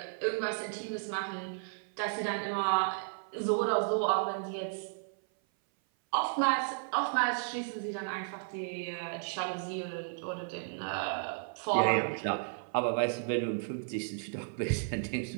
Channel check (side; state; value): left; silent; 55 dB below the other